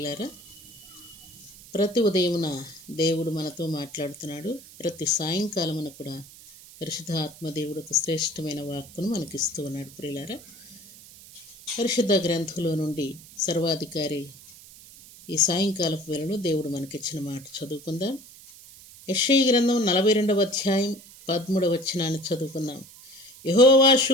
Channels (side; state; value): right; noise; hiss, 20 dB below the sound